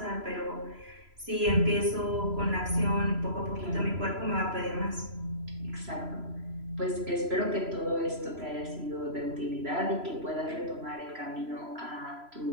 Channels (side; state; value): left; late; 3.0 ms